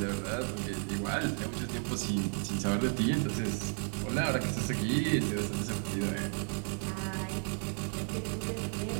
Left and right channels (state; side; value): silent; left; 56 dB below the other